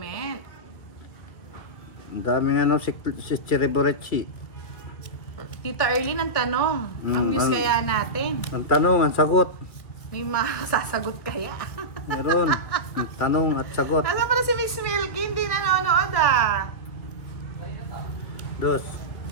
Ang dami nga nung si Chiriborechi. Tita Erlyn, ang tanong. Ang news kaya natin. Ang tanong, ang sagot. May masasagot kaya? Meron. Ang tanong at sagot. Nasa pala si Miss Milky, hindi nanonood ah. Dos.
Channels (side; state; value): right; late; 2.2 ms